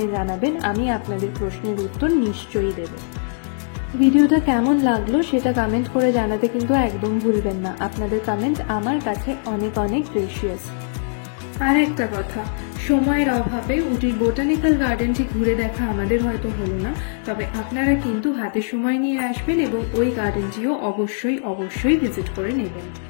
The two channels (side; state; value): right; silent; digital silence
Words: জানাবেন, আমি আপনাদের প্রশ্নের উত্তর নিশ্চয়ই দেব। ভিডিওটা কেমন লাগলো সেটা কমেন্ট করে জানাতে কিন্তু একদম ভুলবেন না। আপনাদের কমেন্ট আমার কাছে অনেক অনেক প্রেশিয়াস। আর একটা কথা, সময়ের অভাবে উটির বোটানিক্যাল গার্ডেনটি ঘুরে দেখা আমাদের হয়তো হলো না, তবে আপনারা কিন্তু হাতে সময় নিয়ে আসবেন এবং ওই গার্ডেনটিও অবশ্যই ভিজিট করে নেবেন।